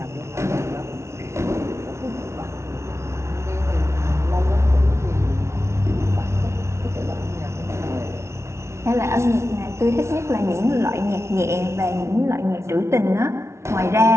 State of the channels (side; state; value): left; late; 0.13 ms